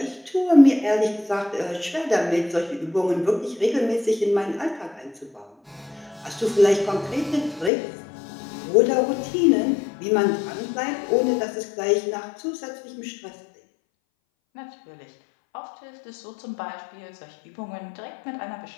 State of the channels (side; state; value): right; drops out; at 7.7 s